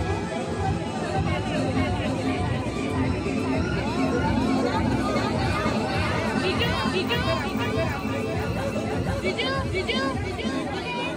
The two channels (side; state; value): both; identical; correlation 1.00